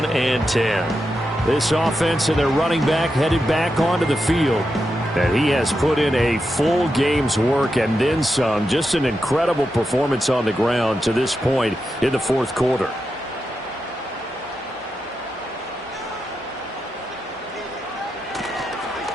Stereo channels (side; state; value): both; normal; correlation 0.87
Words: and 10. This offense and their running back headed back onto the field. And he has put in a full game's work and then some. Just an incredible performance on the ground to this point in the fourth quarter.